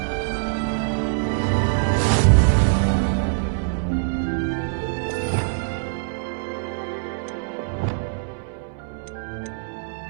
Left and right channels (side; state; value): left; silent; digital silence